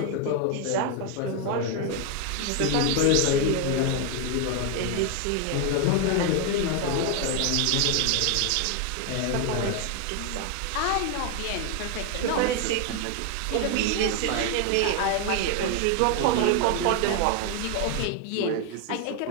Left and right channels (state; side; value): different; both; correlation 0.01